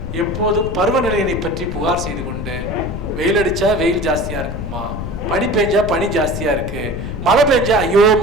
எப்போதும் பருவநிலையினை பற்றி புகார் செய்து கொண்டு, வெயில் அடித்தா வெயில் ஜாஸ்தியாக இருக்குமா, பனி பெஞ்சா பனி ஜாஸ்தியாக இருக்கு, மழை பெஞ்சா ஐயோ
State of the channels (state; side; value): noise; left; rumble, 6 dB below the sound